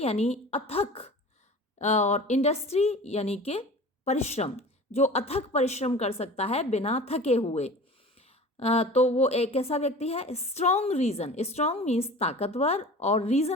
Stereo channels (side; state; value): both; normal; correlation 0.39